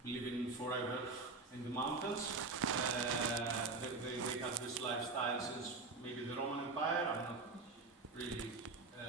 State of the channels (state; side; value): quieter; left; 3.8 dB